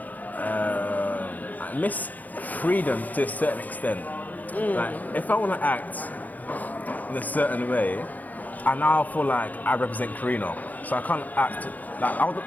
miss freedom to a certain extent. Like, if I want to act in a certain way, I now feel like I represent Corinna. So I can't act like I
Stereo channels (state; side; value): late; right; 0.081 ms